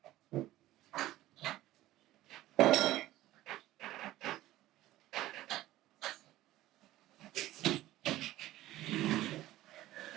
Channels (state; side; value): quieter; left; 15.6 dB